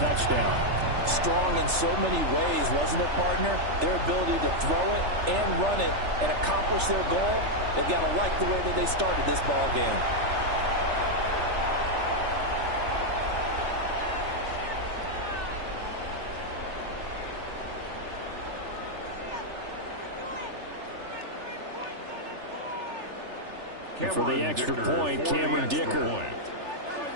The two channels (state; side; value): late; left; 3.4 ms